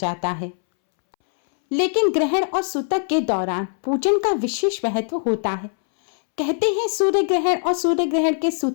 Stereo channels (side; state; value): right; silent; 65 dB below the other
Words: है। लेकिन ग्रहण और सूतक के दौरान पूजन का विशेष महत्व होता है। कहते हैं सूर्य ग्रहण और सूर्य ग्रहण के